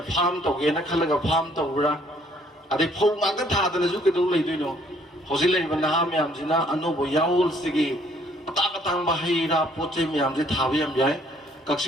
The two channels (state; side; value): normal; both; correlation 0.63